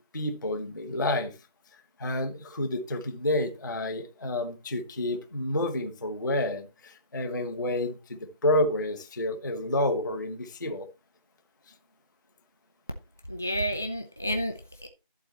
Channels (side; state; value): both; inverted; correlation -0.42